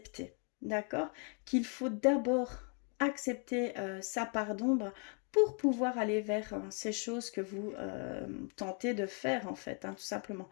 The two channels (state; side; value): quieter; right; 37.8 dB